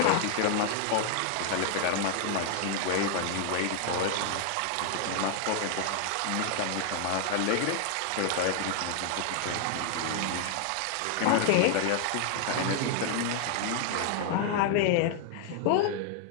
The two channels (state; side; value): different; both; correlation 0.00